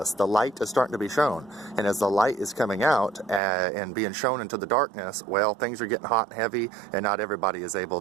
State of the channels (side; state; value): left; drops out; at 3.4 s